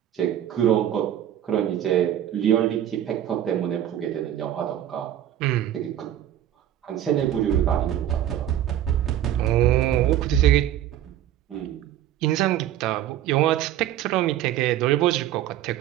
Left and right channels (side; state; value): left; quieter; 11.7 dB